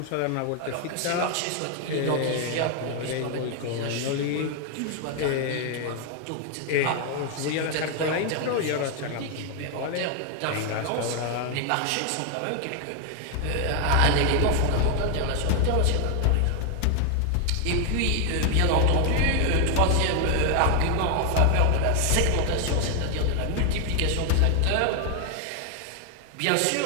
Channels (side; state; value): both; different; correlation 0.00